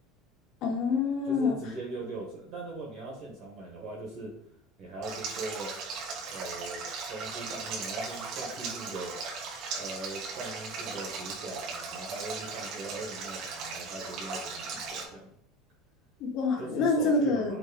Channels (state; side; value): normal; both; correlation 0.34